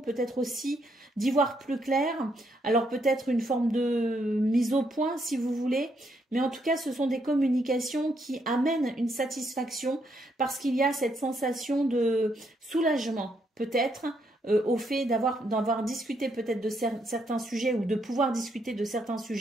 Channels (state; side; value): normal; both; correlation 0.75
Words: peut-être aussi d'y voir plus clair. Alors peut-être une forme de mise au point si vous voulez, mais en tout cas ce sont des communications qui amènent une satisfaction parce qu'il y a cette sensation de soulagement peut-être, au fait d'avoir discuté peut-être de certains sujets ou de pouvoir discuter de certains